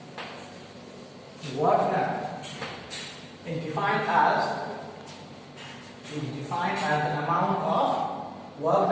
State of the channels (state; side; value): identical; both; correlation 1.00